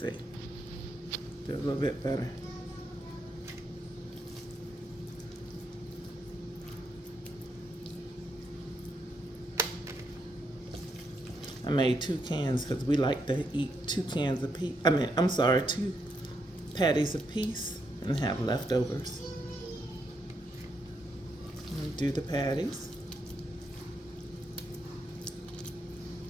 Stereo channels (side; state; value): both; normal; correlation 0.79